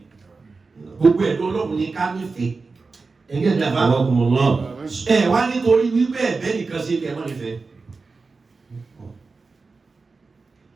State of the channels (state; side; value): quieter; left; 4.2 dB